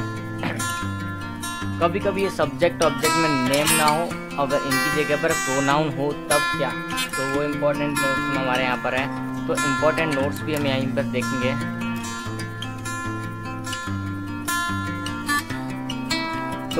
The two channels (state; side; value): identical; both; correlation 1.00